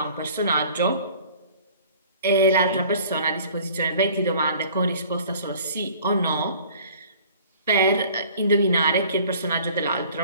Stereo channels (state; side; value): inverted; both; correlation -0.50